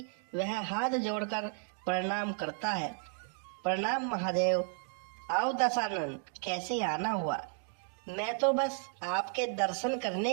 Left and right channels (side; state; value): left; silent; 55 dB below the other